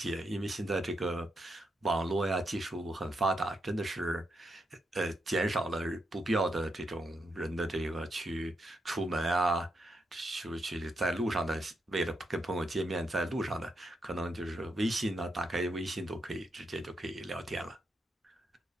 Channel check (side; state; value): both; normal; correlation 0.82